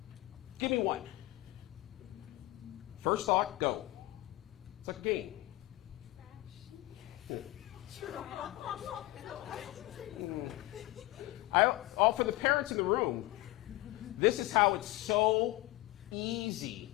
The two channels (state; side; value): quieter; right; 18.6 dB